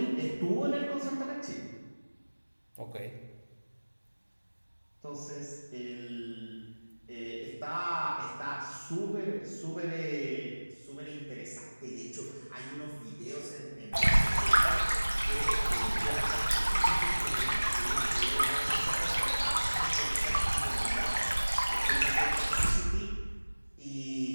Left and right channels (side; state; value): both; inverted; correlation -1.00